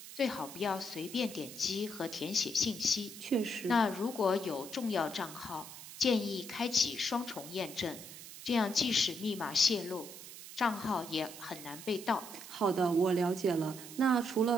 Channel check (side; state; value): right; noise; hiss, 13 dB below the sound